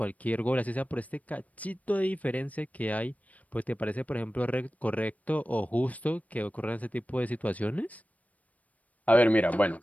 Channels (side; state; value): right; late; 0.070 ms